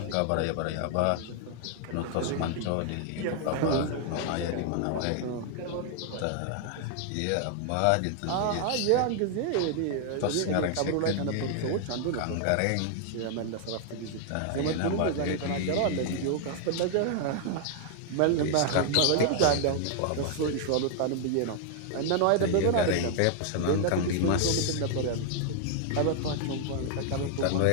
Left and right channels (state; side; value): different; both; correlation 0.00